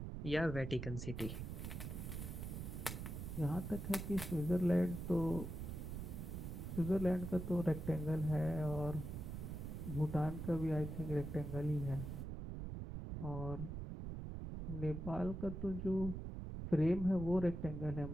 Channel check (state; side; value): noise; right; rumble, 6 dB below the sound